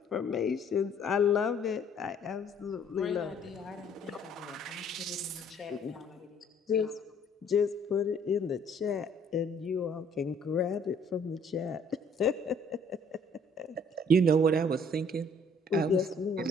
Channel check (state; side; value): normal; both; correlation 0.59